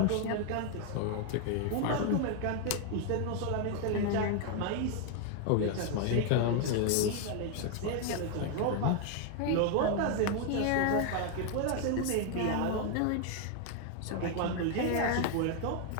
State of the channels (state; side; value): different; both; correlation 0.00